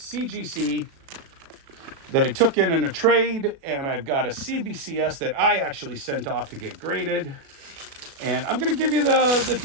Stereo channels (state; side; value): late; left; 36 ms